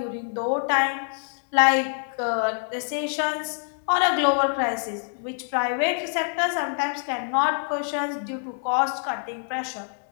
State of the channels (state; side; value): silent; right; 61 dB below the other